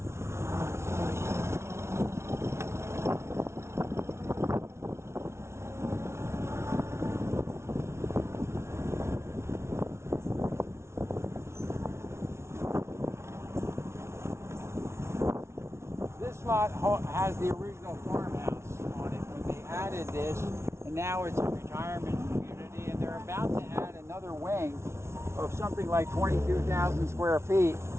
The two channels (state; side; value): late; left; 0.13 ms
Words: This lot has the original farmhouse on it when they added this, and now it's a retirement community, and they're about to add another wing of something like 22,000 square feet